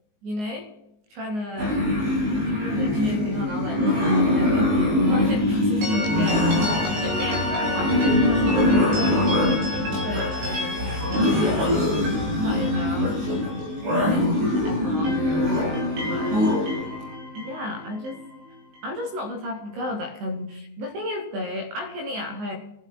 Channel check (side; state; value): left; late; 19 ms